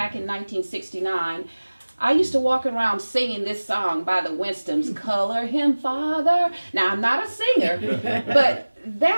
in 1969, I used to walk around singing this song by the Winstons, Color Him Father. Now, I'm not a singer, but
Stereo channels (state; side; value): inverted; both; correlation -1.00